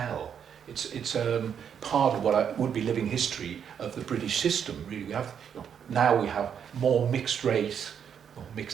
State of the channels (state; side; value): quieter; left; 8.0 dB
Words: It's part of what would be living history of the British system. Really, we have now we have more mixed race or